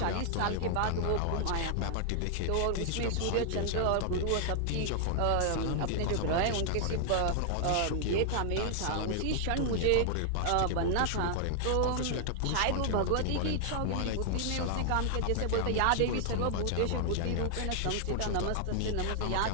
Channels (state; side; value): different; both; correlation 0.00